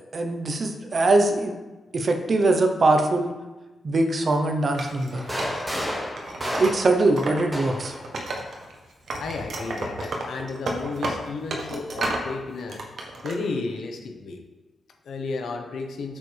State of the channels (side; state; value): both; normal; correlation 0.86